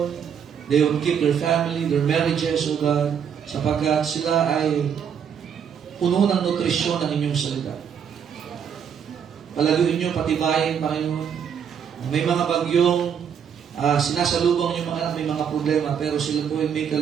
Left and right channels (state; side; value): quieter; left; 7.8 dB